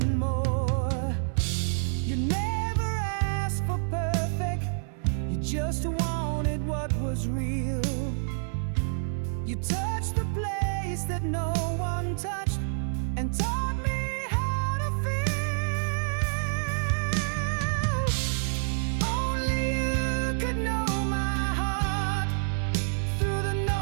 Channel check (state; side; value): silent; left; digital silence